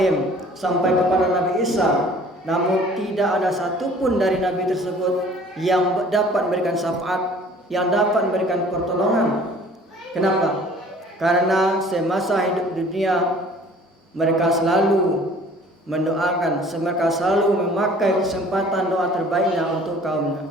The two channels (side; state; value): both; normal; correlation 0.51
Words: sampai kepada Nabi Isa. Namun tidak ada satupun dari nabi tersebut yang dapat memberikan syafaat, yang dapat memberikan pertolongan. Kenapa? Karena semasa hidup dunia mereka selalu mendoakan, mereka selalu memakai kesempatan doa terbaiknya untuk kaumnya.